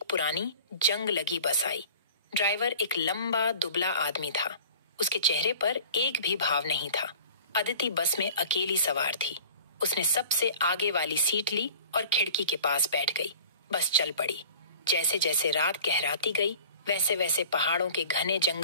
पुरानी जंग लगी बस आई। ड्राइवर एक लंबा दुबला आदमी था। उसके चेहरे पर एक भी भाव नहीं था। अदिति बस में अकेली सवार थी। उसने सबसे आगे वाली सीट ली और खिड़की के पास बैठ गई। बस चल पड़ी। जैसे जैसे रात गहराती गई, वैसे वैसे पहाड़ों के घने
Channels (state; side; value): inverted; both; correlation -0.44